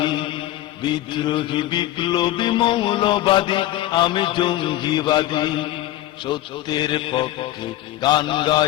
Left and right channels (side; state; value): right; quieter; 14.9 dB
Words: বিদ্রোহী বিপ্লবী মৌলবাদী, আমি জঙ্গিবাদী। সত্যের পক্ষে গান